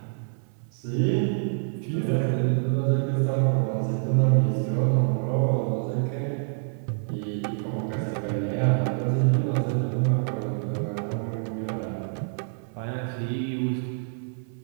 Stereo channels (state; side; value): silent; left; 57 dB below the other